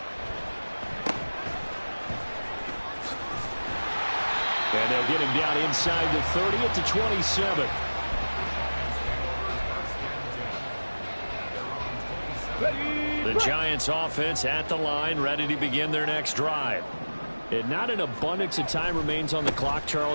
And they'll get him down inside the 30 at the 27. The Giants offense at the line, ready to begin their next drive. And not an abundance of time remains on the clock,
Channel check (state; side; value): inverted; both; correlation -1.00